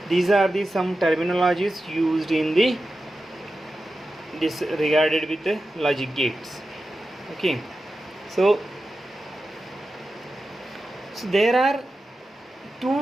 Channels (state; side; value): normal; both; correlation 0.92